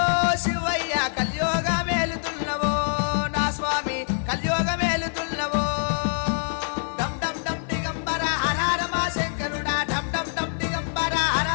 శివయ్య కలియోగ మేలుతున్నవో నా స్వామి కలియోగ మేలుతున్నవో డమ్ డమ్ డమ్ దిగంబర హర హర మా శంకరుడా డమ్ డమ్ డమ్ దిగంబర హర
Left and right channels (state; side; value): silent; right; digital silence